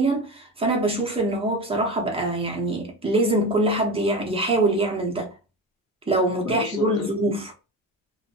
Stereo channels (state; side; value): normal; both; correlation 0.25